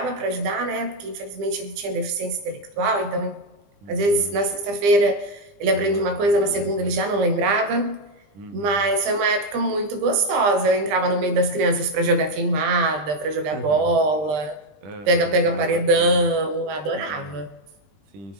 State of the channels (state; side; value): late; left; 20 ms